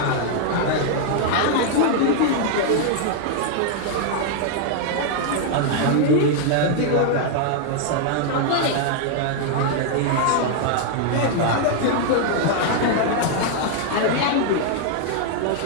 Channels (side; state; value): both; different; correlation 0.00